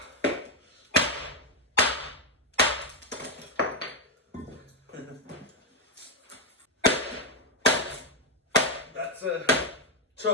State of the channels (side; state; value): both; normal; correlation 0.03